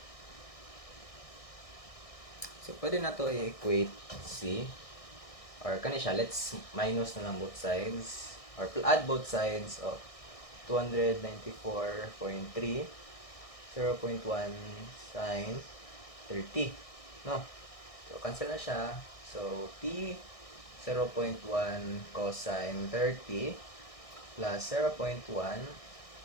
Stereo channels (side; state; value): right; late; 1.6 ms